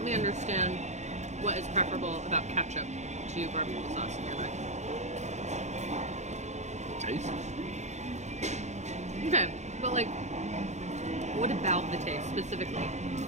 me understand what is preferable about ketchup to barbecue sauce in your mind. The taste. Okay, but like, what about the taste specifically?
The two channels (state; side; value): late; left; 0.33 ms